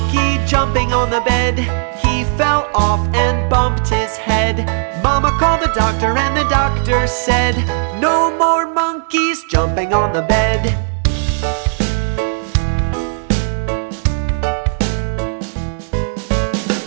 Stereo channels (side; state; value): left; silent; digital silence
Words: jumping on the bed, he fell off and bumped his head. Mama called the doctor and the doctor said, no more monkeys jumping on the bed.